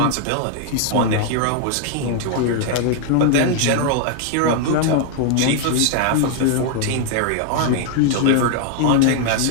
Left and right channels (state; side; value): different; both; correlation 0.00